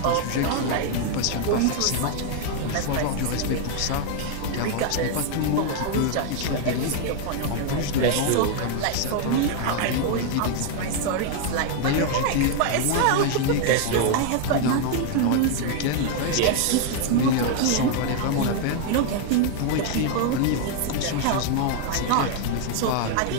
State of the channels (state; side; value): different; both; correlation 0.00